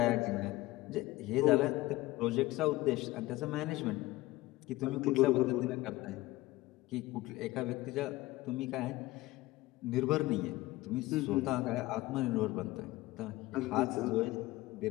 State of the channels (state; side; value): quieter; right; 18.5 dB